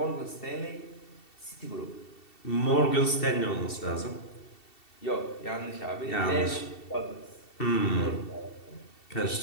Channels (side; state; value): right; late; 2.7 ms